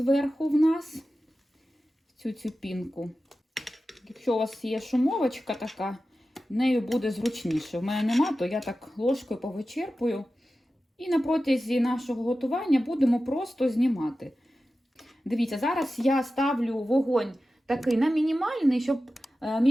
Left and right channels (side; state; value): both; normal; correlation 0.94